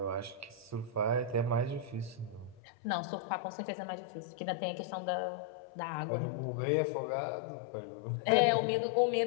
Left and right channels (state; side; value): drops out; right; at 2.6 s